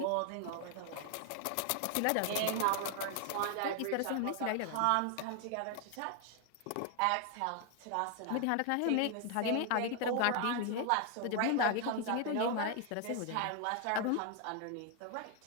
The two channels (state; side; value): different; both; correlation 0.00